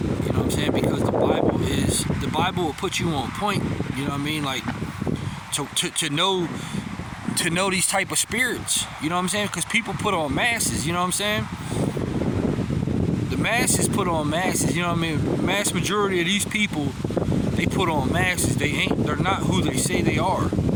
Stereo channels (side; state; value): both; identical; correlation 1.00